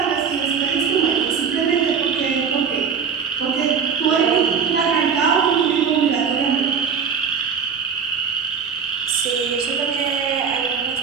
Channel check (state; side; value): quieter; left; 6.4 dB